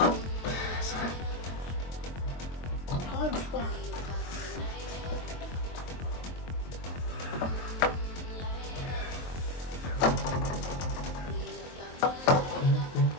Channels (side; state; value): right; late; 23 ms